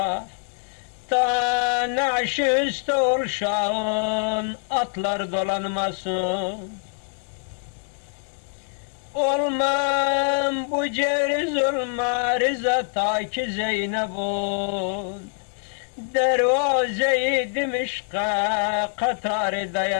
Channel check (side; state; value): right; silent; 55 dB below the other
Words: Ta naş üstü olşan atlar dolanmasın. Olmam bu ceriz olma rıza ta ki Zeynep'un dervaze-i Dimişk'a katarı